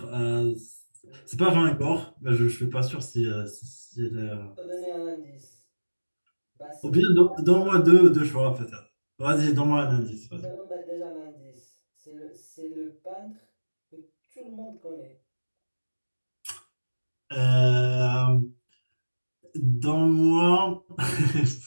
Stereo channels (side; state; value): both; inverted; correlation -1.00